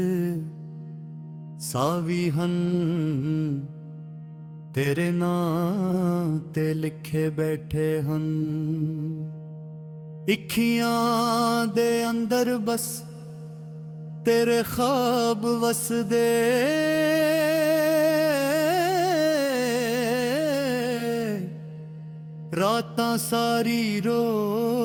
ਸਾਵੀ ਹਨ ਤੇਰੇ ਨਾਂ ਤੇ ਲਿਖੇ ਬੈਠੇ ਹਨ ਅੱਖੀਆਂ ਦੇ ਅੰਦਰ ਬਸ ਤੇਰੇ ਖਾਬ ਵਸਦੇ ਰਾਤਾਂ ਸਾਰੀ ਰੋ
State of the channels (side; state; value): both; identical; correlation 1.00